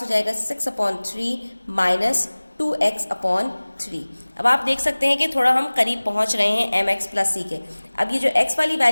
हो जाएगा 6/3 - 2x/3। अब आप देख सकते हैं कि थोड़ा हम करीब पहुंच रहे हैं mx + c के। अब ये जो x वाली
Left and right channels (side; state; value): both; inverted; correlation -1.00